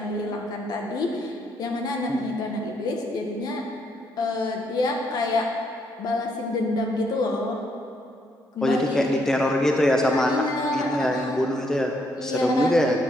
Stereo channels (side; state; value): both; normal; correlation 0.73